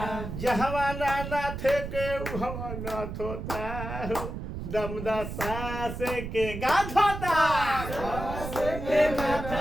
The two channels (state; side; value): noise; right; rumble, 7 dB below the sound